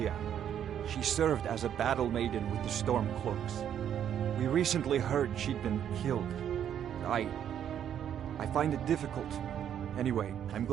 She served as a battle maiden with the Stormcloaks. We recently heard she'd been killed. I find it difficult. Anyway, I'm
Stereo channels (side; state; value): left; quieter; 9.5 dB